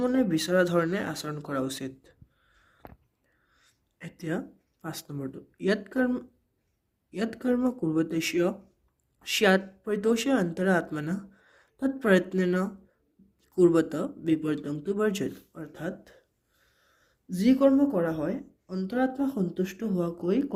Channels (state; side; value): identical; both; correlation 1.00